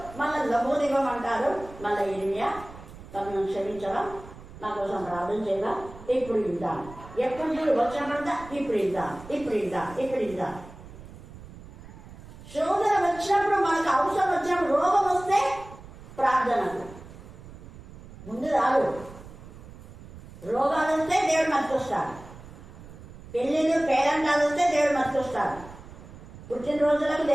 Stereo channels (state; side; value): noise; right; rumble, 17 dB below the sound